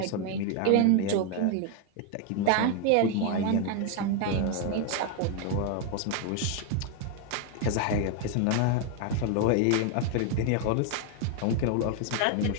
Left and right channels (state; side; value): different; both; correlation 0.01